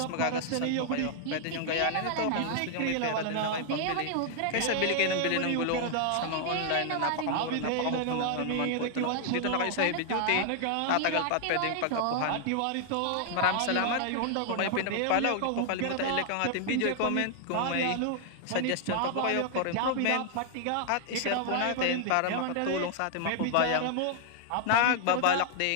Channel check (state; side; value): different; both; correlation 0.00